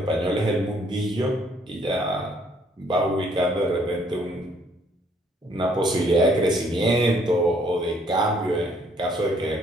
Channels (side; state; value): both; normal; correlation 0.64